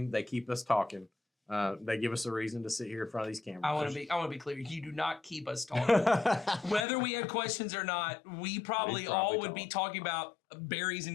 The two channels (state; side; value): drops out; right; at 6.9 s